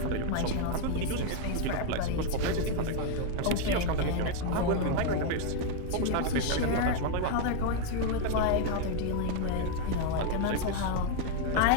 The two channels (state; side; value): different; both; correlation 0.01